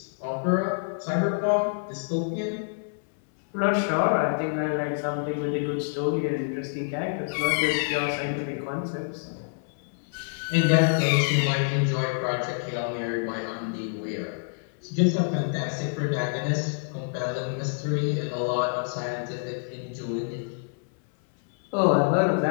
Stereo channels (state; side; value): silent; right; 58 dB below the other